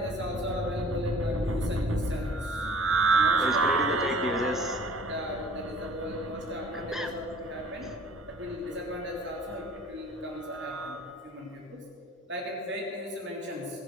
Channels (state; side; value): normal; both; correlation 0.50